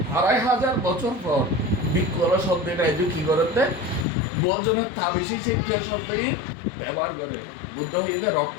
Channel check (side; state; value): right; drops out; at 4.0 s